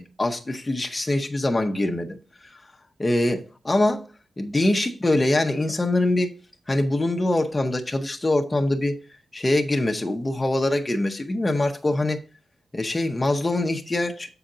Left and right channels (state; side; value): normal; both; correlation 0.95